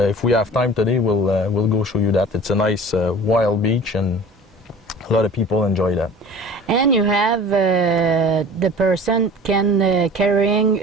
if we have time today, we'll go show you that. It's a nice wild beach, and a lot of people enjoy that. And you have the person can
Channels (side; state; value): both; normal; correlation 0.42